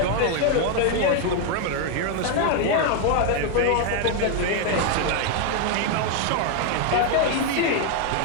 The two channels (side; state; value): both; different; correlation 0.01